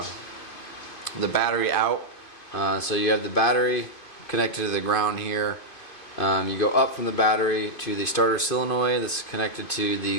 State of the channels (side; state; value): right; late; 2.5 ms